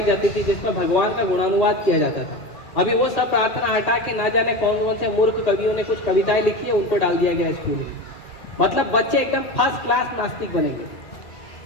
जाती थी जिसमें भगवान का गुणानुवाद किया जाता था। अभी वो सब प्रार्थना हटा के ना जाने कौन कौन से मूर्ख कवियों ने कुछ कविताएं लिखी है उनको डाल दिया गया स्कूल में। मतलब बच्चे एकदम फर्स्ट क्लास नास्तिक बनेंगे।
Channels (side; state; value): right; late; 2.4 ms